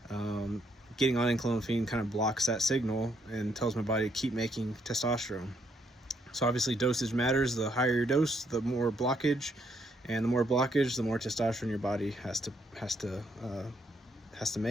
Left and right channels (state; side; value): normal; both; correlation 0.73